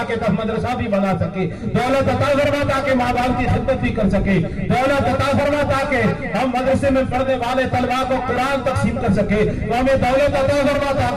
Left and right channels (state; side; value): identical; both; correlation 1.00